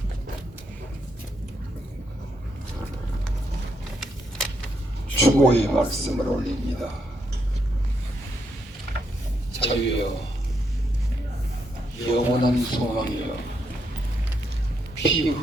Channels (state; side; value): normal; both; correlation 0.78